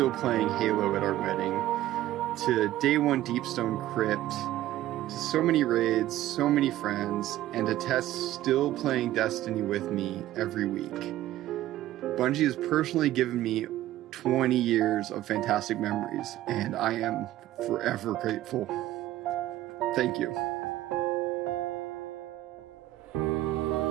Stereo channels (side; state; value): left; quieter; 14.5 dB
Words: playing Halo at our wedding, to Day 1 Deepstone Crypt, to so many raids, so many friends, and to Tess still playing Destiny with me every week. Bungie has personally given me 20 years of fantastic memories, and I am forever grateful. Thank you.